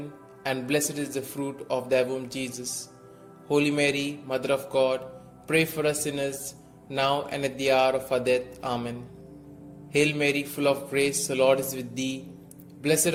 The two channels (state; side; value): identical; both; correlation 1.00